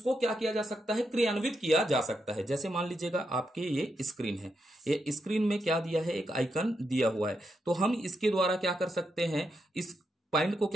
क्या किया जा सकता है? क्रियान्वित किया जा सकता है। जैसे मान लीजिएगा आपके ये स्क्रीन है। ये स्क्रीन में क्या दिया है? एक आइकन दिया हुआ है। तो हम इसके द्वारा क्या कर सकते हैं? इस पॉइंट को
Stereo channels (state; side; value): normal; both; correlation 0.83